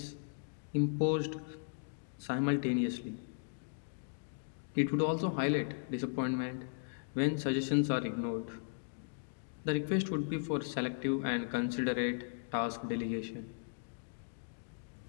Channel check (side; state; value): right; silent; digital silence